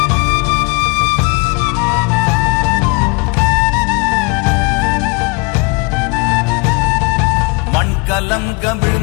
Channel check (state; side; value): quieter; right; 28.3 dB